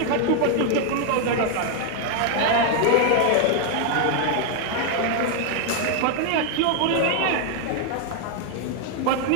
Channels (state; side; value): different; both; correlation 0.00